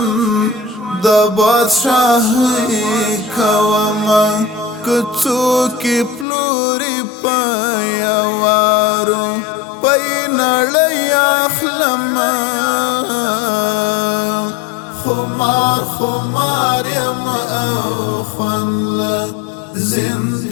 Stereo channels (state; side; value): drops out; right; at 6.2 s